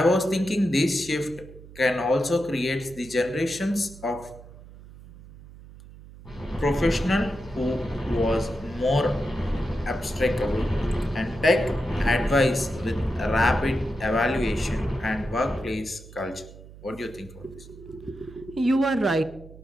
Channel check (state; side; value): noise; right; hum, 18 dB below the sound